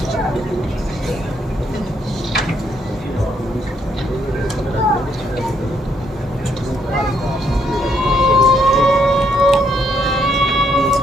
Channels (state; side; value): normal; both; correlation 0.73